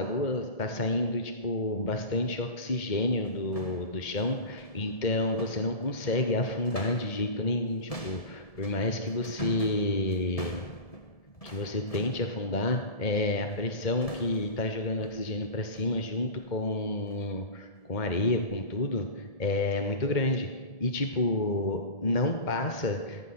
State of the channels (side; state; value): right; late; 1.7 ms